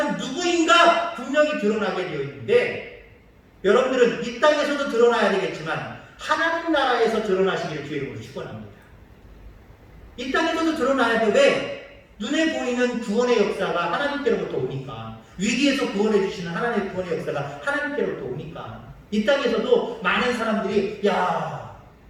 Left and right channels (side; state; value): both; identical; correlation 1.00